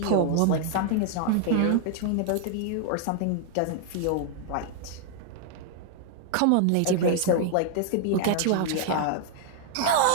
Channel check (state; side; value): different; both; correlation 0.00